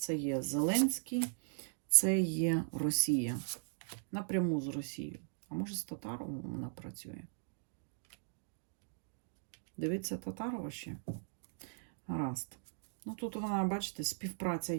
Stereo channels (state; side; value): silent; left; digital silence